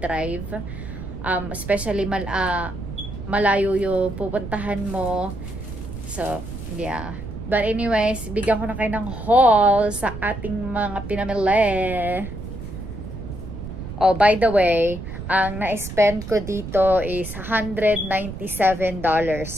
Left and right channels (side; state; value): right; noise; rumble, 9 dB below the sound